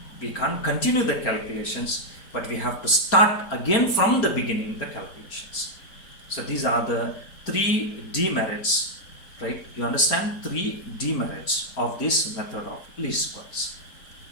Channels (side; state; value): right; late; 4.4 ms